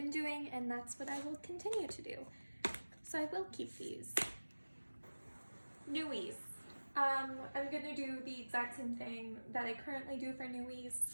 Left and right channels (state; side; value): inverted; both; correlation -1.00